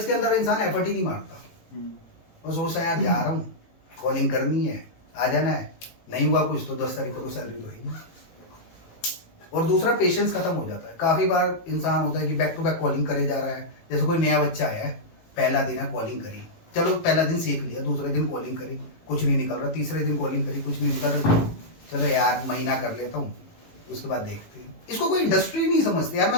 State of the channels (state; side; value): late; right; 18 ms